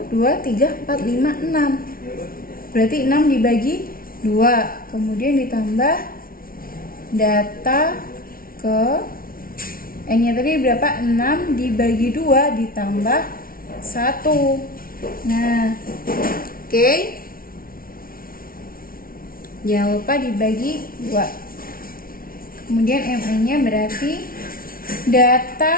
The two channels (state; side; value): late; right; 0.43 ms